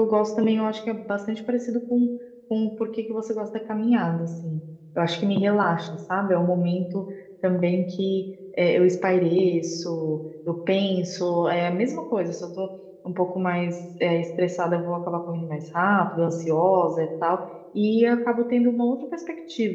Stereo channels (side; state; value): both; identical; correlation 1.00